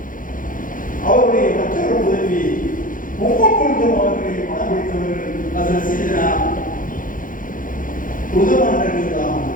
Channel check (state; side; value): late; right; 0.39 ms